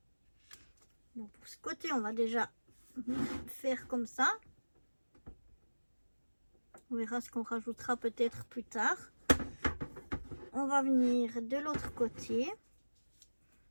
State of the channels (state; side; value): inverted; both; correlation -1.00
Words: Bon, pour ce côté, on va déjà faire comme ça. On verra ce qu'on rajoutera peut-être plus tard. On va venir de l'autre côté.